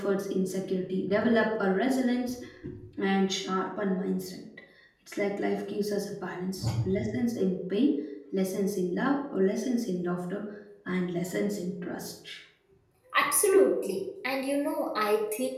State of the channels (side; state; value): both; identical; correlation 1.00